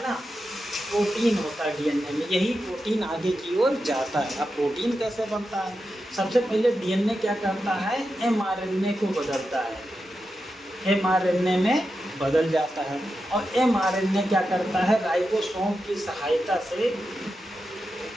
ना। प्रोटीन होता है डीएनए में, यही प्रोटीन आगे की ओर जाता है। अब प्रोटीन कैसे बनता है, सबसे पहले डीएनए क्या करता है, एमआरएनए को बदलता है, एमआरएनए में बदल जाता है। और एमआरएनए क्या करता है, राइबोसोम की सहायता से,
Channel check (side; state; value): both; normal; correlation 0.89